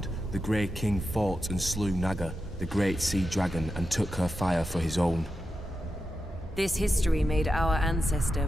the Grey King fought and slew Naga, the great sea dragon, and took her fire for his own. This history made our ancestor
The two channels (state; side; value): normal; both; correlation 0.89